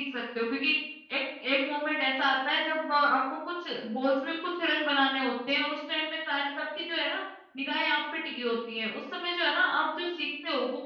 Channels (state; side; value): identical; both; correlation 1.00